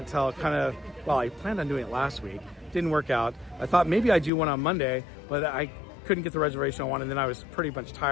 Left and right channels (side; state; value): right; drops out; at 4.3 s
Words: kind of, well, I planned on doing it last week. Didn't work out. I thought maybe I'd do one on Monday, but I couldn't get the reservation on one, and then I was pretty much